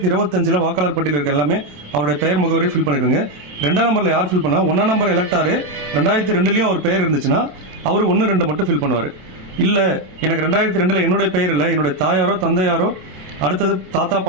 வாக்காளர் பட்டியல் இருக்க எல்லாமே அவருடைய பெயர் முகவரி ஃபில் பண்ணிடுங்க. 2ஆம் நம்பரில் யார் ஃபில் பண்ணா 1 நம்பர் எலக்டாரு 2002 அவர் பெயர் இருந்துச்சுன்னா அவர் 1, 2 மட்டும் ஃபில் பண்ணுவார். இல்லை எனக்கு 2002 என்னுடைய பெயர் இல்லை, என்னுடைய தாயாரோ தந்தையாரோ அடுத்தது தாத்தா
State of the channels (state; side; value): late; left; 27 ms